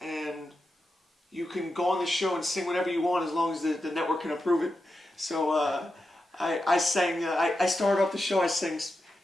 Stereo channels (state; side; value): normal; both; correlation 0.89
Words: you can go on the show and sing whatever you want as long as the network can approve it. So I sang, I started off the show, I sang